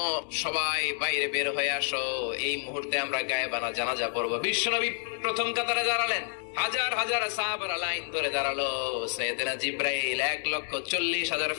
সবাই বাইরে বের হয়ে আসো, এই মুহূর্তে আমরা গায়েবানা জানাজা পড়বো। বিশ্বনবী প্রথম কাতারে দাঁড়ালেন, হাজার হাজার সাহাবারা লাইন ধরে দাঁড়ালো। সাইয়েদনা জিব্রাইল 1,40,000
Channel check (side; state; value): right; silent; 59 dB below the other